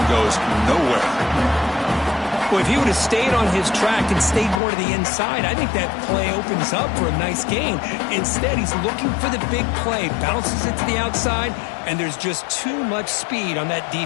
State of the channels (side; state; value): right; drops out; at 4.6 s